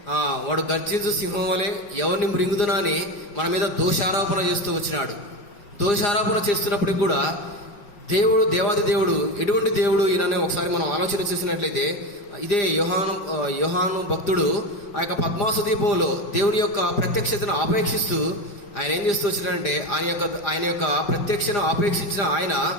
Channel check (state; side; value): late; right; 4.9 ms